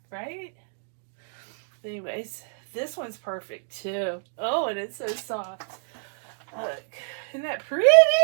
right? Anyways, this one's perfect too. Oh, and it's so soft. Look, isn't that pretty?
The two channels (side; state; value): left; silent; digital silence